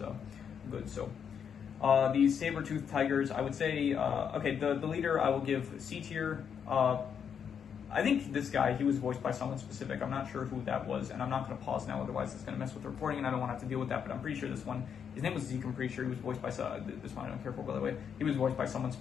good. So these saber-toothed tigers, I would say, okay, the leader I will give C tier. I think this guy, he was voiced by someone specific. I'm not sure who that was, and I'm not going to pause now, otherwise it's going to mess with the recording, and I don't want to have to deal with that, but I'm pretty sure this one, his name was Zeke, I'm pretty sure he was voiced by, this one I don't care for, by the way. He was voiced by someone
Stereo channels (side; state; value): right; quieter; 7.5 dB